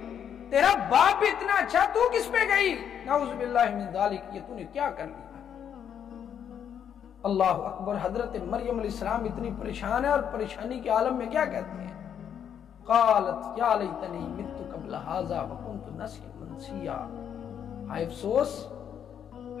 تیرا باپ بھی اتنا اچھا، تو کس پہ گئی؟ نعوذ باللہ من ذالک، یہ تو نے کیا کر لیا؟ اللہ اکبر۔ حضرت مریم علیہ السلام اتنی پریشان ہے اور پریشانی کے عالم میں کیا کہتے ہیں؟ قالت یا لیتنی مت قبل ھذا وکنت نسیا منسیا، ہائے افسوس،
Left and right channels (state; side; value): quieter; right; 8.7 dB